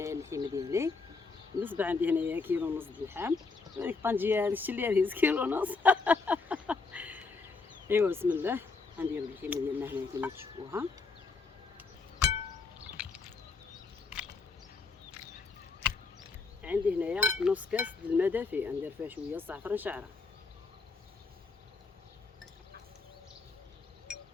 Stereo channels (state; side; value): quieter; right; 4.2 dB